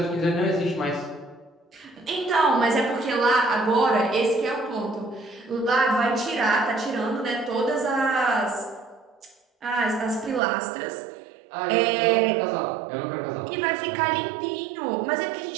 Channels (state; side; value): drops out; left; at 10.4 s